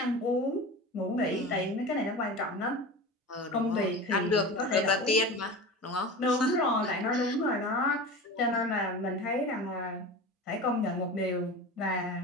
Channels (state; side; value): normal; both; correlation 0.31